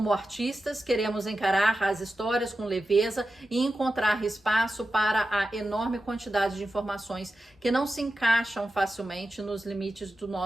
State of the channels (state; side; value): normal; both; correlation 0.91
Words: artistas, queremos encarar as histórias com leveza e encontrar espaço para a enorme quantidade de informações que não se encaixam facilmente nos limites do